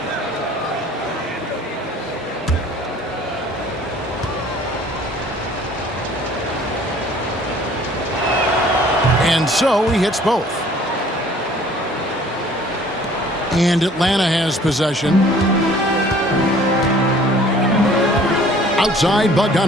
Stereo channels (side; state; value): both; normal; correlation 0.53